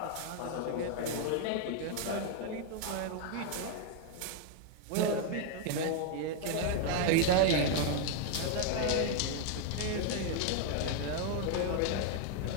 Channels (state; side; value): different; both; correlation 0.00